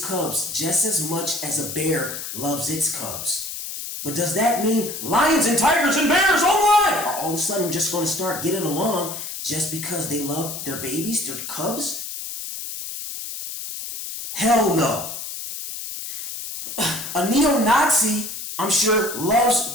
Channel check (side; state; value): left; noise; hiss, 7 dB below the sound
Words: cubs just as much as a bear loves its cubs. But does that mean lions and tigers and bears, are all of a sudden just going to start getting along just because they love their babies, their cubs? Hell no. A neo-Nazi, I'm sure, loves